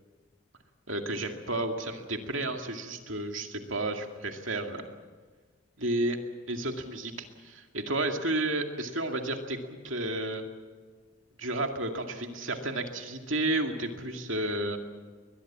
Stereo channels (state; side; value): normal; both; correlation 0.08